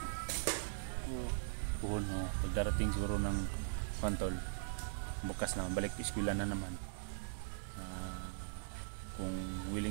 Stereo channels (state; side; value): silent; left; digital silence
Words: Puhon mo, pagdarating siguro ng tol, bukas na, balik eskwela na naman. Kung